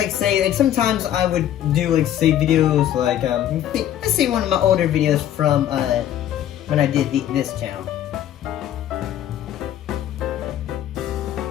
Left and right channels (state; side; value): quieter; right; 11.4 dB